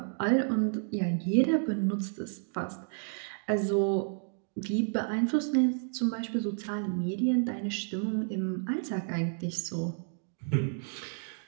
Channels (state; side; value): silent; left; 57 dB below the other